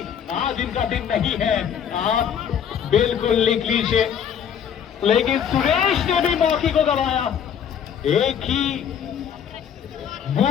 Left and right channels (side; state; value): right; quieter; 8.4 dB